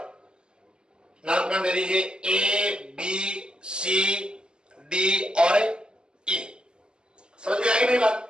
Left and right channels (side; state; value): left; late; 0.048 ms